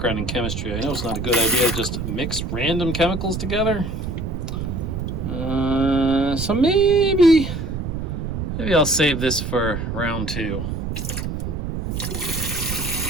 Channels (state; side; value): noise; right; rumble, 4 dB below the sound